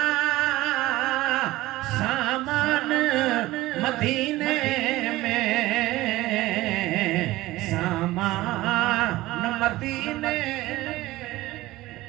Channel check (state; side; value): quieter; left; 17.8 dB